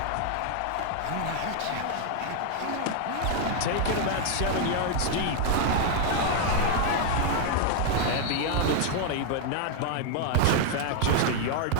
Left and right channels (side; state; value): both; different; correlation 0.00